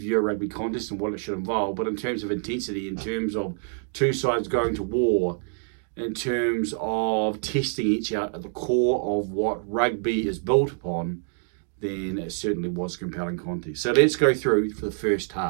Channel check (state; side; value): silent; left; 61 dB below the other